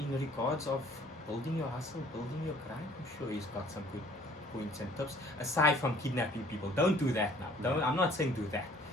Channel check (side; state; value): both; normal; correlation 0.55